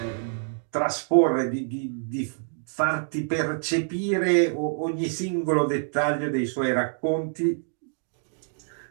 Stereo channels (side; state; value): left; silent; digital silence